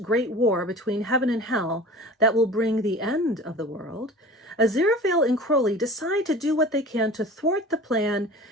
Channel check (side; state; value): both; normal; correlation 0.39